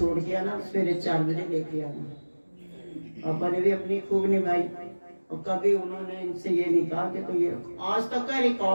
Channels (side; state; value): both; inverted; correlation -1.00